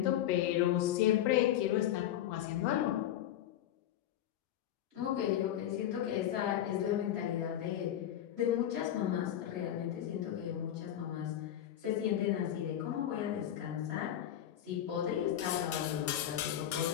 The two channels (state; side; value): quieter; right; 11.5 dB